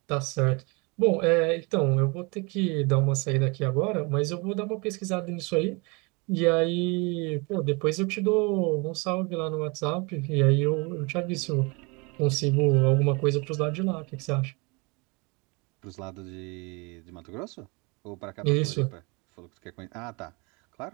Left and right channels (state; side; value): quieter; left; 29.0 dB